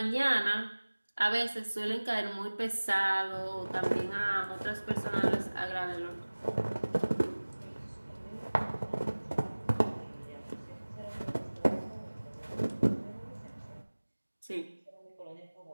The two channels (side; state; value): both; inverted; correlation -1.00